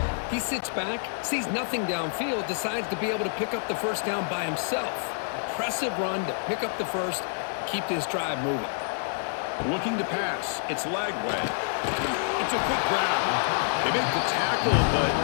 he sits back, sees nothing downfield, decides to be able to pick up the first down by himself. Impressive run to pick up the first, keep this drive moving. Looking to pass. It's Lagway. It's a quick grab. They make the tackle, but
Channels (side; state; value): right; silent; digital silence